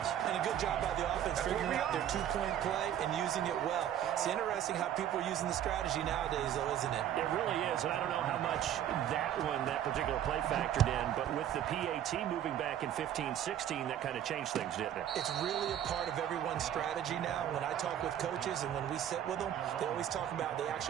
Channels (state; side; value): quieter; left; 10.7 dB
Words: And a good job by the offense figuring out their 2-point play and using it well. It's interesting how people are using the strategy nowadays, though, isn't it? It really is, and I don't know how much that particular play factored in, but with the PAT moving back in 15-16, that kind of changed things, didn't it? It's really a part of everyone's strategy now. When I talk with coaches and when we sit with them, they always talk about they